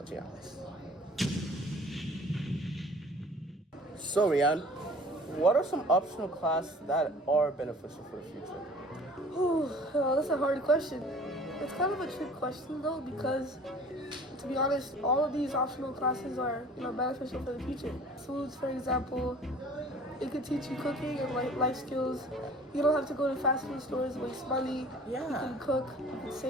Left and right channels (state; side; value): normal; both; correlation 0.48